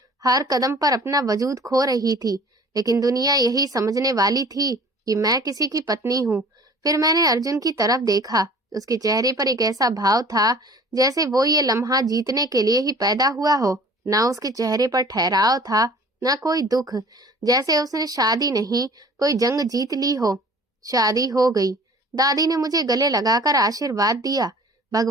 हर कदम पर अपना वजूद खो रही थी। लेकिन दुनिया यही समझने वाली थी कि मैं किसी की पत्नी हूँ। फिर मैंने अर्जुन की तरफ देखा। उसके चेहरे पर एक ऐसा भाव था जैसे वो ये लम्हा जीतने के लिए ही पैदा हुआ हो। ना उसके चेहरे पर ठहराव था, ना कोई दुख, जैसे उसने शादी नहीं, कोई जंग जीत ली हो। शादी हो गई। दादी ने मुझे गले लगाकर आशीर्वाद दिया।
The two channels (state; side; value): normal; both; correlation 0.47